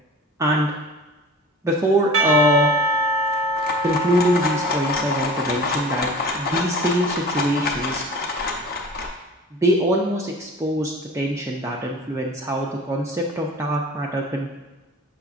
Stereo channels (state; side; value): normal; both; correlation 0.40